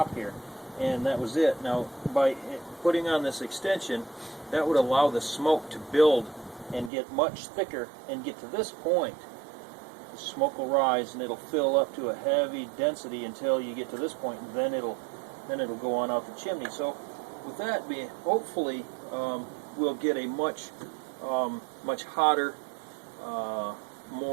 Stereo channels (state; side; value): drops out; left; at 6.9 s